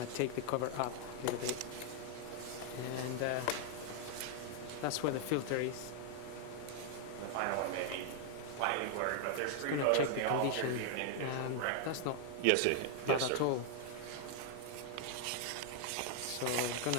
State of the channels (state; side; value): different; both; correlation 0.00